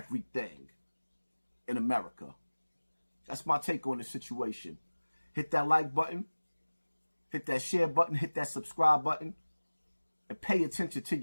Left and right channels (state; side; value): inverted; both; correlation -1.00